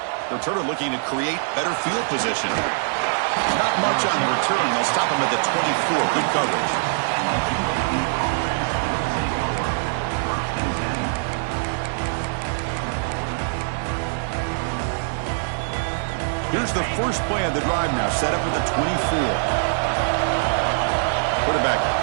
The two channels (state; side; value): silent; left; digital silence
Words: Returner looking to create better field position. Not much on the return. They'll stop him at the 24. Good coverage. Here's the first play of the drive now, set up with the 24. Quarterback